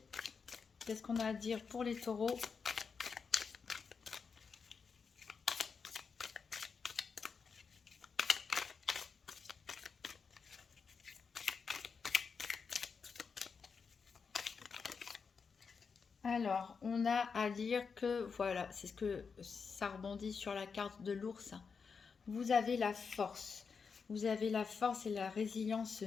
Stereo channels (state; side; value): quieter; right; 5.6 dB